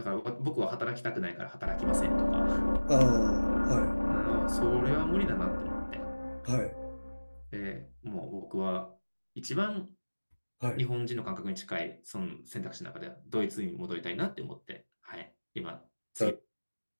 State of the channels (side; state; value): both; inverted; correlation -1.00